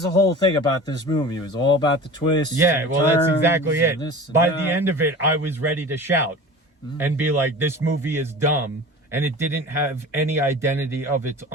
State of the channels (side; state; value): both; normal; correlation 0.37